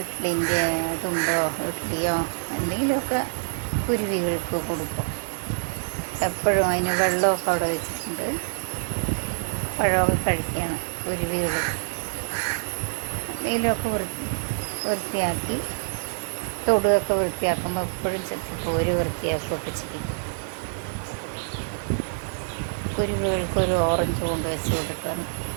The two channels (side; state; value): left; silent; 61 dB below the other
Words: തുണ്ടോ ഇഡ്ഡലിയോ എന്തെങ്കിലുമൊക്കെ കുരുവികൾക്ക് കൊടുക്കും. എപ്പോഴും അതിന് വെള്ളമൊക്കെ അവിടെ വെച്ചിട്ടുണ്ട്. പഴമൊക്കെ കഴിക്കുകയാണ് കുരുവികൾ. എന്തെങ്കിലുമൊക്കെ വൃത്തിയാക്കി തൊടുകയൊക്കെ വൃത്തിയാക്കുമ്പോൾ എപ്പോഴും ചെത്തിപ്പോര് വൃത്തിയാക്കുകയൊക്കെ ചെയ്യും. കുരുവികൾക്ക് ഒരു ഓറഞ്ച് കൊണ്ട് വെച്ച് കൊടുക്കണം.